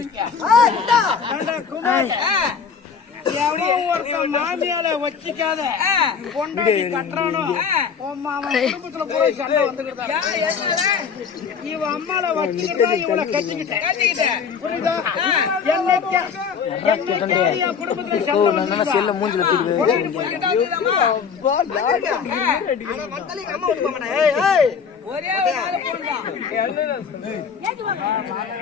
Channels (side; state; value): right; quieter; 6.4 dB